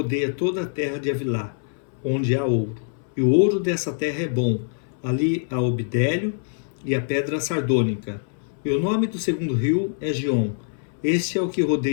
toda a terra de Avilá, onde há ouro. E o ouro dessa terra é bom. Ali há o bidélio e a pedra sardônica. E o nome do segundo rio é Gion. Este é o que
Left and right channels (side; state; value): right; silent; 62 dB below the other